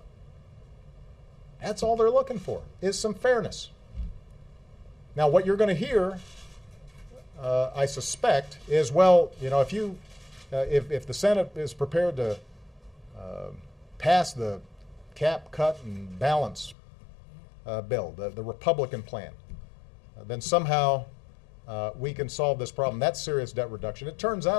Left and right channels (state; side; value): drops out; right; at 16.8 s